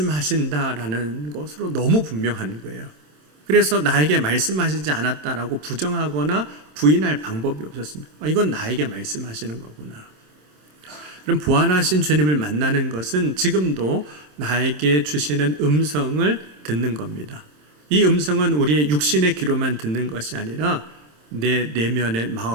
것으로 너무 분명한 거예요. 그래서 나에게 말씀하시지 않았다라고 부정하거나 부인할 방법이 없었습니다. 이건 나에게 말씀하시는 거구나. 그럼 부활하신 주님을 만나는 것은 지금도 나에게 주시는 음성을 듣는 겁니다. 이 음성은 우리의 육신의 귀로만 듣는 것이 아니라 내 내면의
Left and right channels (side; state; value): left; late; 27 ms